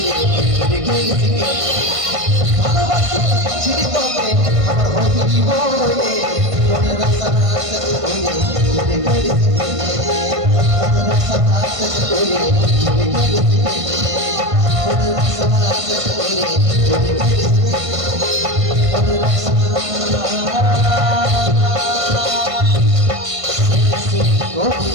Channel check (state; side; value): late; left; 1.5 ms